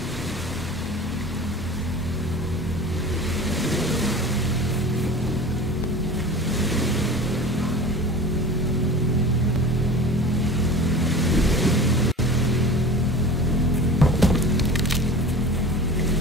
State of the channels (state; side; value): normal; both; correlation 0.37